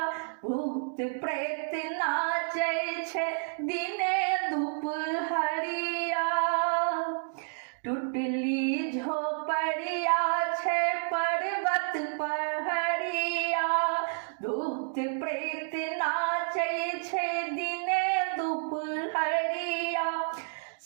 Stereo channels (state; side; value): silent; left; digital silence